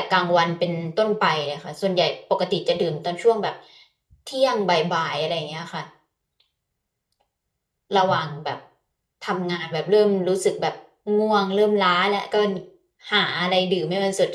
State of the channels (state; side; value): identical; both; correlation 1.00